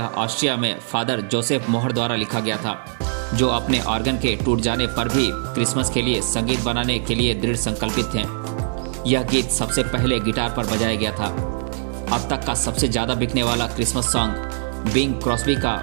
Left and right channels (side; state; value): left; silent; digital silence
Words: ऑस्ट्रिया में फादर जोसेफ मोहर द्वारा लिखा गया था, जो अपने ऑर्गन के टूट जाने पर भी क्रिसमस के लिए संगीत बनाने के लिए दृढ़ संकल्पित थे। यह गीत सबसे पहले गिटार पर बजाया गया था। अब तक का सबसे ज़्यादा बिकने वाला क्रिसमस सॉन्ग बिंग क्रॉस्बी का